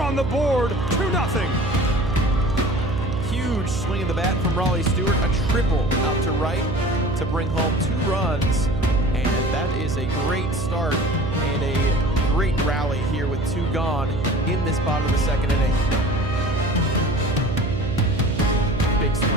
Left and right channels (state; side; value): noise; right; hum, 4 dB below the sound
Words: the board, 2-0. Huge swing of the bat from Raleigh Stewart. A triple out to right to bring home 2 runs. And that is a great start and a great rally here with 2 gone in this bottom of the second inning. Big